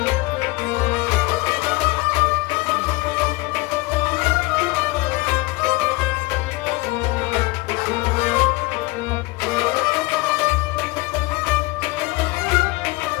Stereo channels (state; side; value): quieter; right; 23.1 dB